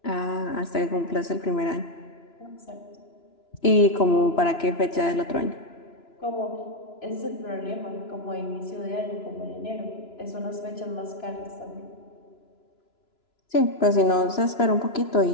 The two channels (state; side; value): late; right; 2.9 ms